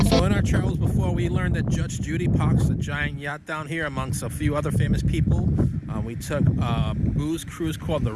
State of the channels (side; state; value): both; identical; correlation 1.00